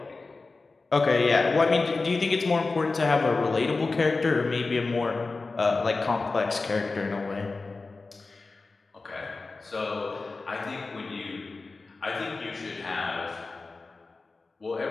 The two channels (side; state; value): right; quieter; 3.8 dB